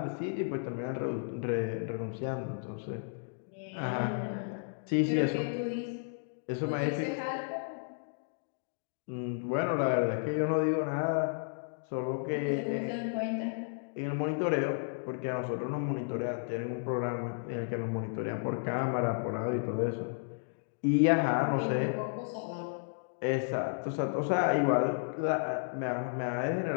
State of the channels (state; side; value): silent; right; digital silence